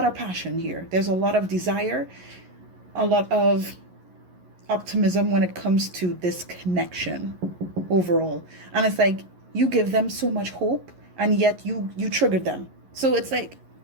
of passion here. There's a lot of desire, a lot of optimism when it comes to this connection overall. And it's like, you give them so much hope, and yet you triggered them. So it's like,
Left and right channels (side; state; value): left; late; 11 ms